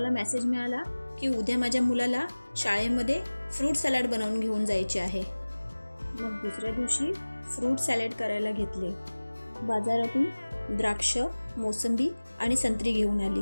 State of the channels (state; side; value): inverted; both; correlation -1.00